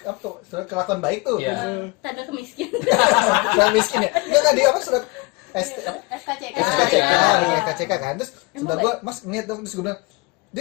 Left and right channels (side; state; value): right; quieter; 25.9 dB